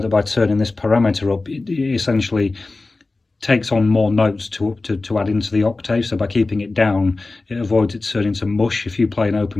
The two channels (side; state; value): right; quieter; 3.4 dB